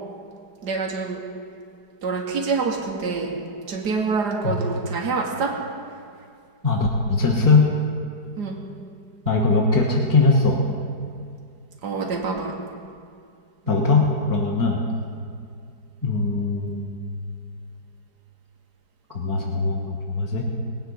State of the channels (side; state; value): left; late; 4.9 ms